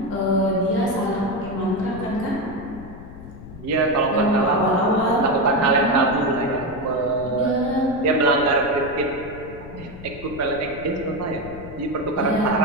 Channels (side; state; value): left; noise; rumble, 15 dB below the sound